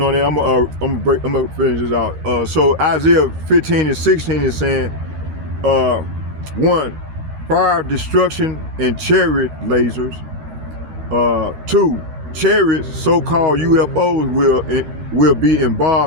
on it, I'm gonna finish this out. So Isaiah 15 and 16 is saying, 1, fire, destruction, and chariot lasers. 2, chariots, so-called UFOs, will be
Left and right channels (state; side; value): late; left; 13 ms